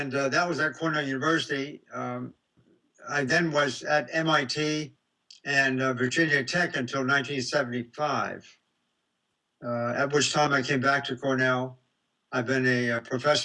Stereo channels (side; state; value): both; identical; correlation 1.00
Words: that was at Cornell University. I then was at MIT and Virginia Tech until 1975, at which time I came back to Cornell. I've been a